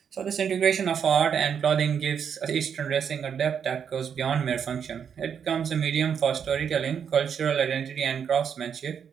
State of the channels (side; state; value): left; quieter; 7.5 dB